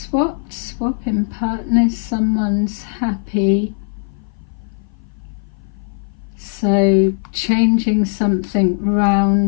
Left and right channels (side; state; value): right; silent; 57 dB below the other